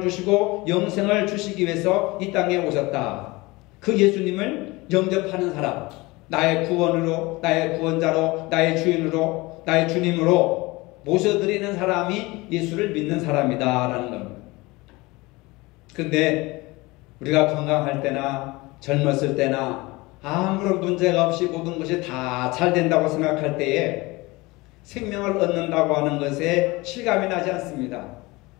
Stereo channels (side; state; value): right; quieter; 22.6 dB